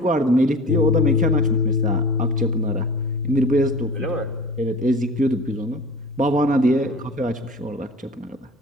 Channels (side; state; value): both; normal; correlation 0.39